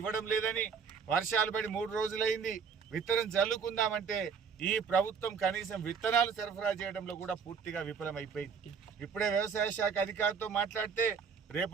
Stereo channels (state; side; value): quieter; left; 6.1 dB